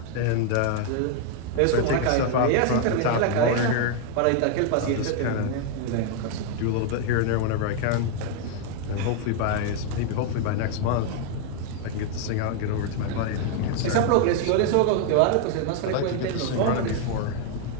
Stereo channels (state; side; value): different; both; correlation 0.00